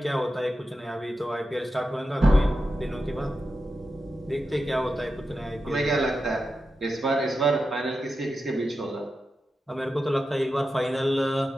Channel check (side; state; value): both; normal; correlation 0.90